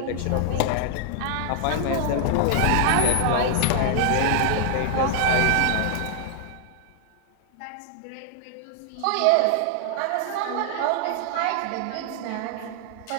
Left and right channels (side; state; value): both; different; correlation 0.00